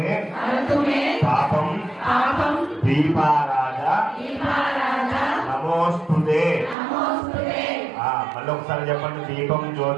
पापम दीपाराजा नमोस्तुते మళ్ళీ ఒకసారి చెప్పండి. దీపం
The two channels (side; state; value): left; drops out; at 6.8 s